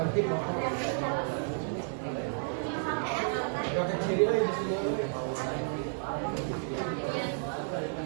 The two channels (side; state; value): left; silent; digital silence